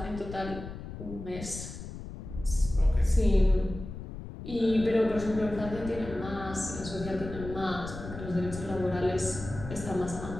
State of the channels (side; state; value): left; noise; rumble, 10 dB below the sound